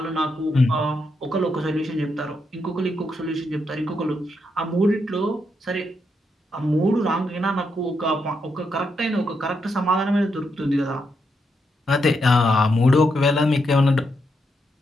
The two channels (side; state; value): both; normal; correlation 0.81